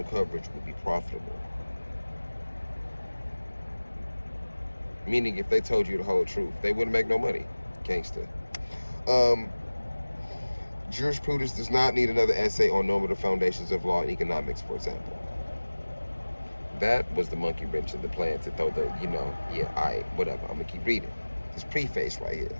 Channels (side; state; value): both; inverted; correlation -1.00